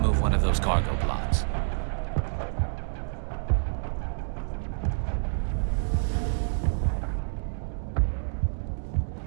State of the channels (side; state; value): left; silent; digital silence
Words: one of those cargo pods.